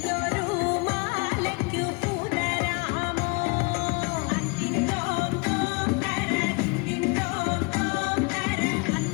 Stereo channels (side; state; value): right; quieter; 30.4 dB